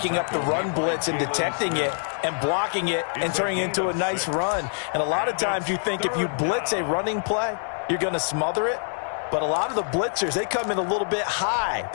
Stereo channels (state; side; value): silent; right; digital silence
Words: up the run blitz and detecting it and blocking it and turning it into a nice run. And a lot of times you think if you blitz a running play, you're going to smother it. But a lot of the blitzers, they come in a little bit high.